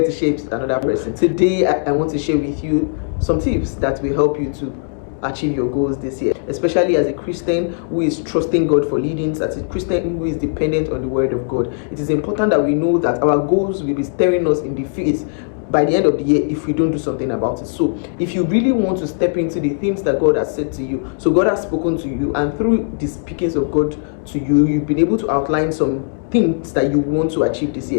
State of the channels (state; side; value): silent; right; digital silence